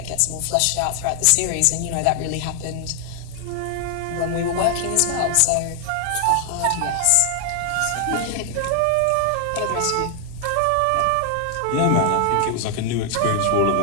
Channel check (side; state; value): both; different; correlation 0.00